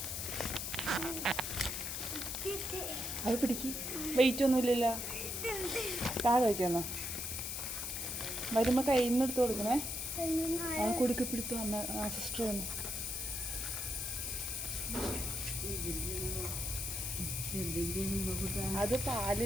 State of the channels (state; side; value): noise; left; hiss, 4 dB below the sound